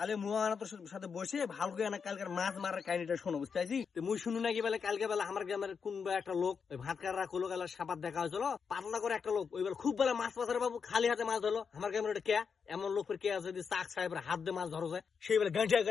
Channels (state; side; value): quieter; right; 6.1 dB